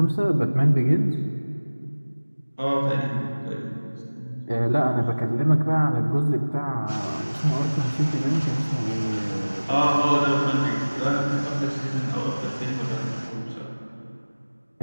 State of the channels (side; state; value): both; inverted; correlation -1.00